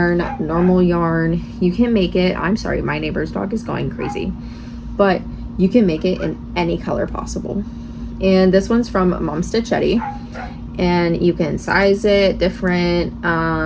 normal yarn. You can make it, I'm sorry, my neighbor's dog is going crazy, but you can make it in any color possible. And this one's from Mom Stitchetti, and you can size it different.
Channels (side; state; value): both; identical; correlation 1.00